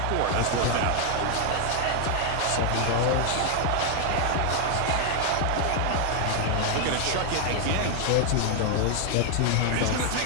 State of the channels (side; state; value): both; different; correlation 0.00